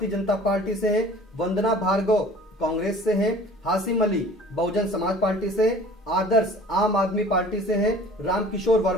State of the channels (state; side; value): normal; both; correlation 0.47